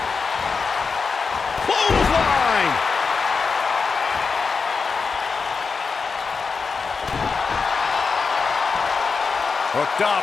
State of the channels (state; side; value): quieter; right; 5.0 dB